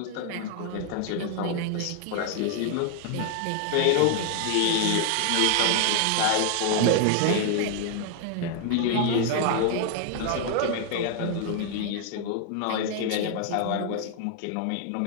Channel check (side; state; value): both; different; correlation 0.00